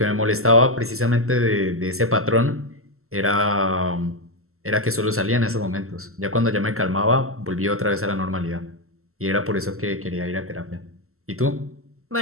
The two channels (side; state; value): left; late; 0.63 ms